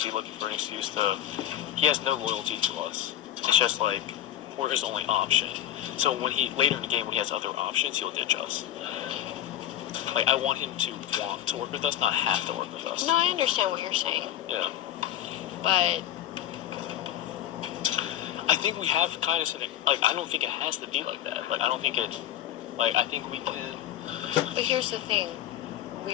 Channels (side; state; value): right; quieter; 11.7 dB